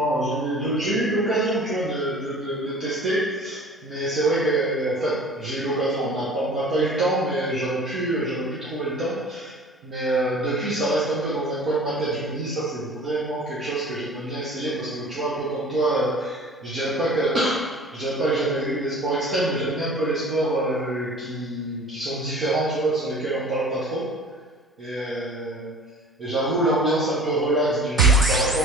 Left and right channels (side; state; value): both; normal; correlation 0.44